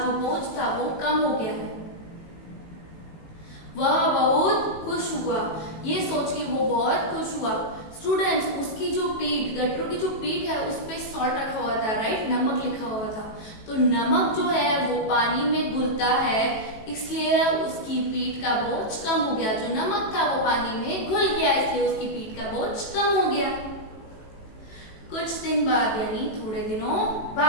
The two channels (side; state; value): right; late; 18 ms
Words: बोझ था वो कम हो गया है। वह बहुत खुश हुआ। ये सोच के वो बहुत खुश हुआ। स्टूडेंट्स, उसकी जो पीठ, गटरू की जो पीठ है उस पे सॉल्ट रखा हुआ था, राइट, नमक लिखा हुआ था। तो नमक जो है वो पानी में घुलता है, इसलिए उसकी पीठ का बोझ कम हो गया। जो नमक था वो पानी में घुल गया, इसलिए उसकी पीठ का बोझ कम हो गया। कुछ दिन बाद, यानी थोड़े दिनों